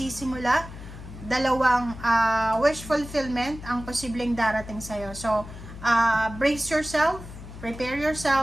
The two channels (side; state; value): left; noise; hum, 13 dB below the sound